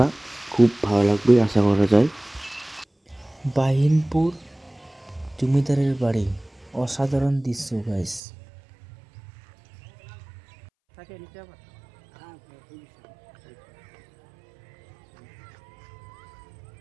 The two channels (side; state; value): left; drops out; at 8.2 s